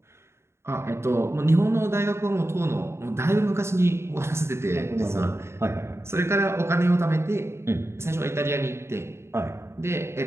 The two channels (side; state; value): left; late; 0.13 ms